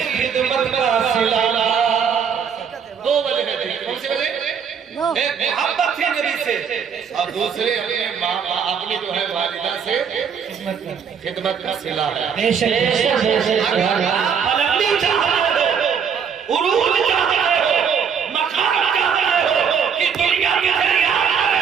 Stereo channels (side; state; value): left; quieter; 7.1 dB